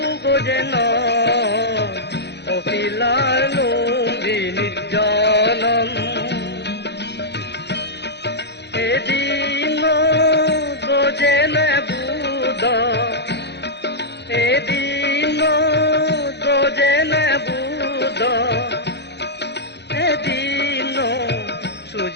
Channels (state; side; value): late; right; 0.50 ms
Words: যেন অপিলার লুম্বিনী জনম এদিন গোজেন বুদ এদিন গোজেন বুদ এদিন